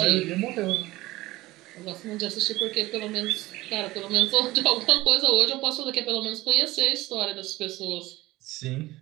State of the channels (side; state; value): left; quieter; 18.6 dB